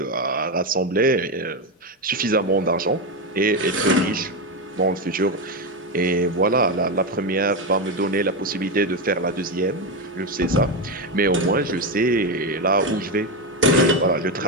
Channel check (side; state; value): both; normal; correlation 0.10